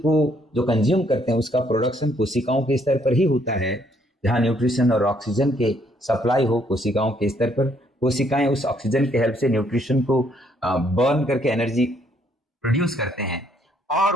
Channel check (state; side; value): normal; both; correlation 0.68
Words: जो कंज्यूम करते हैं उसका प्रोडक्शन कोशिकाओं के स्तर पर ही होता है। जहां न्यूट्रिशन और ऑक्सीजन के सप्लाई हो कोशिकाओं के स्तर पर, कोशिकाएं उस ऑक्सीजन के हेल्प से न्यूट्रिशन को बर्न करके एनर्जी प्रोड्यूस करते हैं।